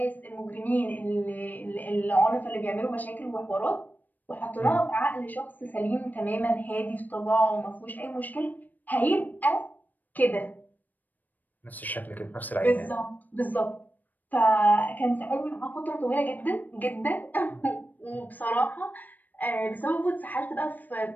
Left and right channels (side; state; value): right; late; 0.085 ms